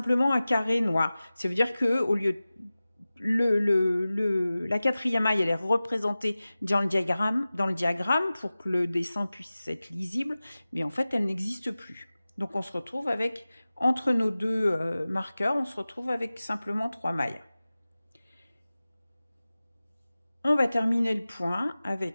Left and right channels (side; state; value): both; inverted; correlation -0.97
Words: un carré noir. Ça veut dire que au lieu la 4e maille, elle est représentée dans le diagramme pour que le dessin puisse être lisible, mais en fait, elle n'existe plus. Donc, on se retrouve avec, entre nos 2 marqueurs, on se retrouve avec simplement 3 mailles. On va terminer le point